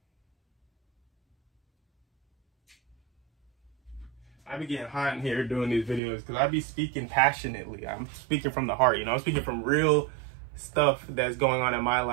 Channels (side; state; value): left; drops out; at 6.0 s